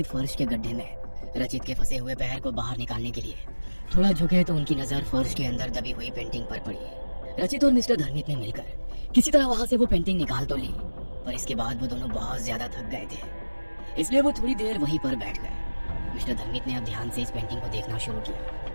फर्श के गड्ढे में रचित के फंसे हुए पैर को बाहर निकालने के लिए थोड़ा झुके तो उनकी नजर फर्श के अंदर दबी हुई पेंटिंग पर पड़ी। रचित और मिस्टर धर्मित ने मिलकर किसी तरह वहां से वो पेंटिंग निकाल तो ली, पर इसके बाद वो दोनों बहुत ज्यादा थक गए थे, इसलिए वो थोड़ी देर वहीं पर बैठ गए। मिस्टर धर्मित ने अब ध्यान से इस पेंटिंग को देखना शुरू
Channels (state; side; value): inverted; both; correlation -1.00